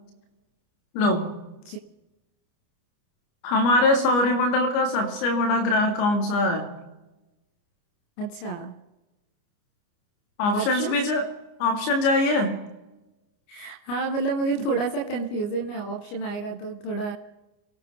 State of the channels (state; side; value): late; right; 29 ms